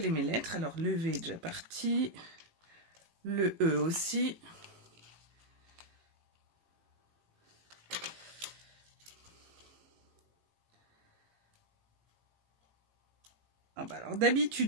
mes lettres. Alors, le V est déjà parti. Le E aussi. Ah bah alors,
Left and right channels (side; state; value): left; late; 18 ms